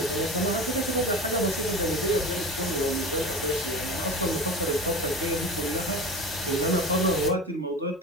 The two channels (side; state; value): both; normal; correlation 0.31